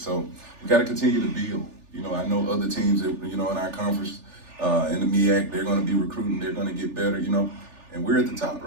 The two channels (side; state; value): left; late; 3.4 ms